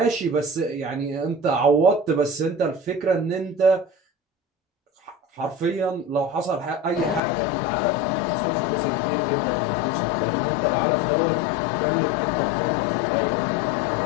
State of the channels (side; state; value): right; drops out; at 7.2 s